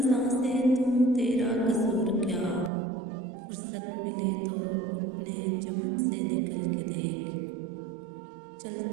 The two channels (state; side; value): drops out; left; at 2.7 s